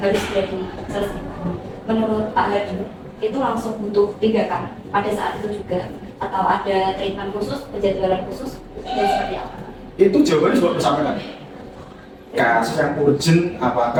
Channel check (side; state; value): both; identical; correlation 1.00